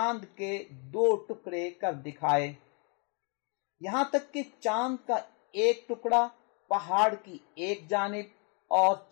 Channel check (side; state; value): right; quieter; 36.2 dB